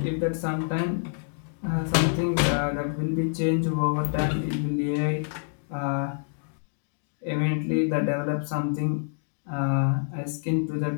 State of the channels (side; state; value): right; silent; digital silence